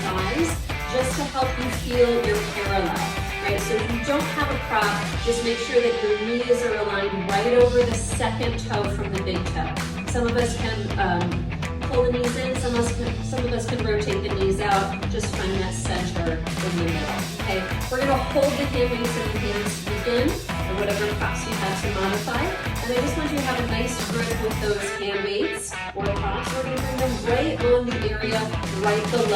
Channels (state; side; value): identical; both; correlation 1.00